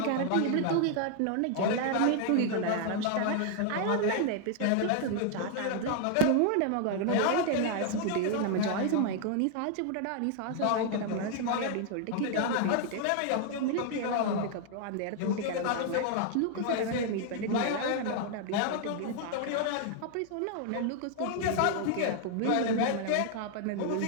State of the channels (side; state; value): both; different; correlation 0.00